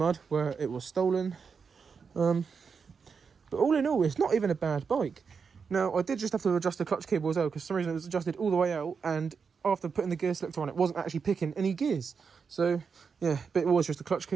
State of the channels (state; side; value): quieter; left; 5.8 dB